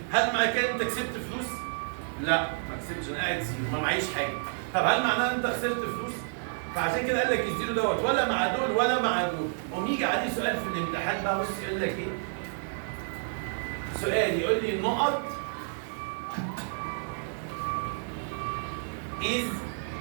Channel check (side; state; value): left; silent; 58 dB below the other